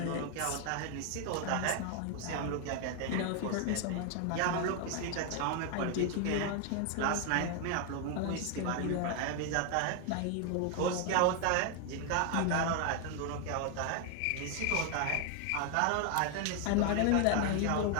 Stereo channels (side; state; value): both; different; correlation 0.01